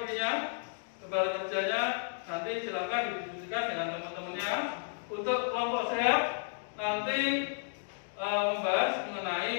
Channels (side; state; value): right; silent; digital silence